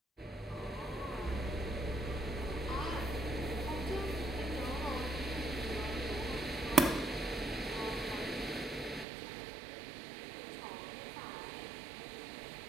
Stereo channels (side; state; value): left; drops out; at 9.1 s